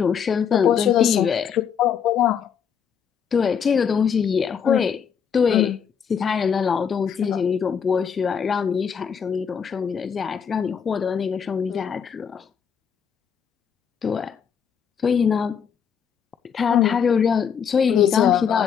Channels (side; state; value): right; quieter; 7.4 dB